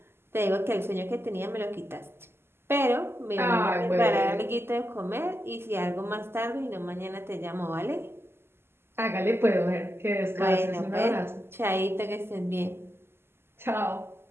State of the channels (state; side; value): late; left; 0.12 ms